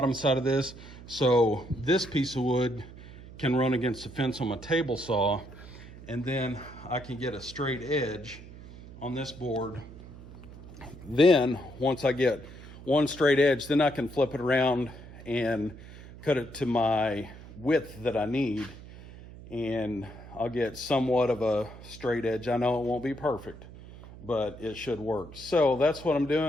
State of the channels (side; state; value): right; noise; hum, 16 dB below the sound